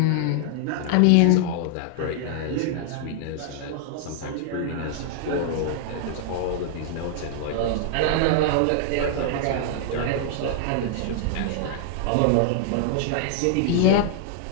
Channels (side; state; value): both; different; correlation -0.01